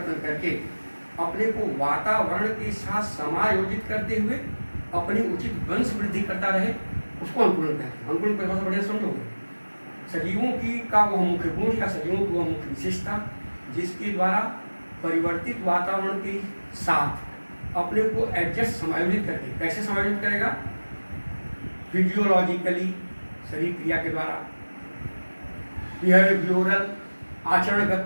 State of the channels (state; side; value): inverted; both; correlation -1.00